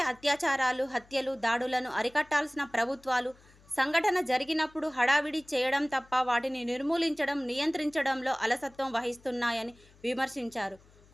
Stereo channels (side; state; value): left; noise; hum, 28 dB below the sound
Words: అత్యాచారాలు, హత్యలు, దాడులను అరికట్టాల్సిన ప్రభుత్వాలు సంఘటన జరిగినప్పుడు హడావిడి చేయడం తప్ప వాటిని నిర్మూలించడం, నియంత్రించడంలో అలసత్వం వహిస్తున్నాయని విమర్శించారు.